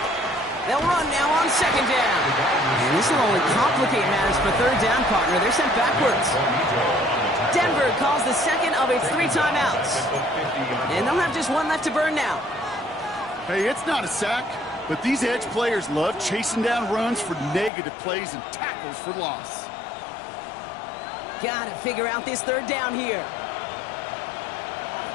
They'll run now on 2nd down. And this will only complicate matters for 3rd down, partner. They're sent backwards. Denver calls the 2nd of its 3 timeouts. And they'll have just 1 left to burn now. Hey, it's not a sack, but these edge players love chasing down runs for negative plays and tackles for loss. Gotta figure out this 3rd down here.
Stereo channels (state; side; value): drops out; right; at 17.7 s